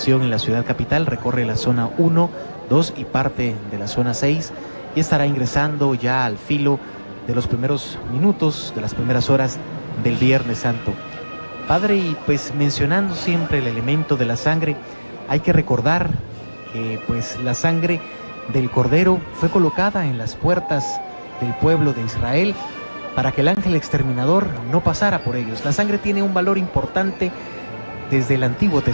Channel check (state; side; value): inverted; both; correlation -1.00